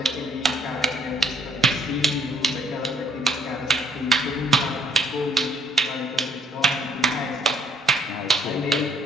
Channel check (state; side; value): normal; both; correlation 0.65